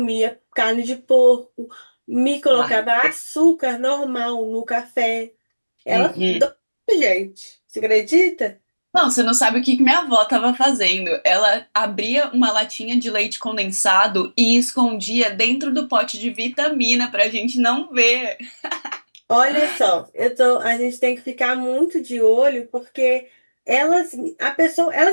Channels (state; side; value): inverted; both; correlation -1.00